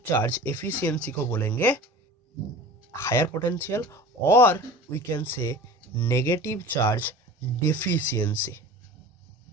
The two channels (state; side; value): normal; both; correlation 0.38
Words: charge efficiency को बोलेंगे हायर पोटेंशियल, और we can say negative charge deficiency.